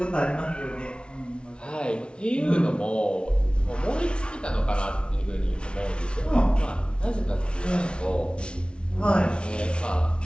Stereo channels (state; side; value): late; right; 0.057 ms